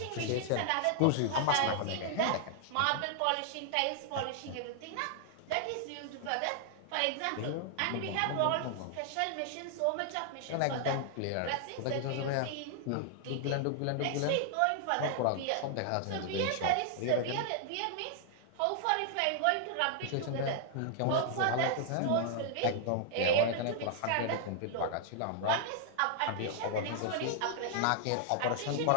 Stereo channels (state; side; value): different; both; correlation 0.00